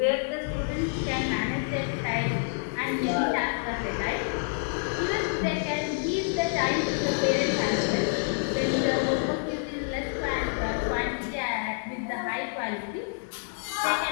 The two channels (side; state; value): right; silent; digital silence